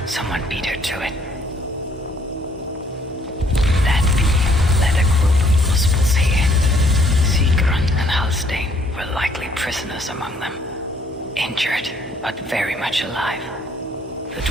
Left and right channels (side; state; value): both; normal; correlation 0.64